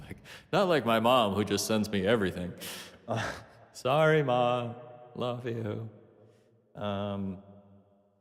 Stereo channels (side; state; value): both; identical; correlation 1.00